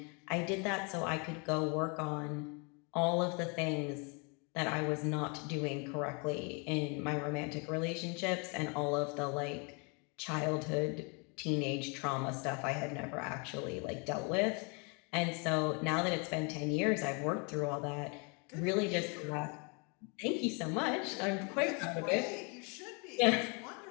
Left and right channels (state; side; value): quieter; right; 33.3 dB